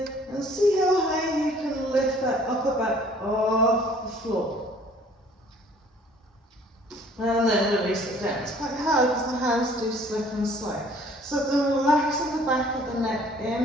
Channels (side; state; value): both; normal; correlation 0.56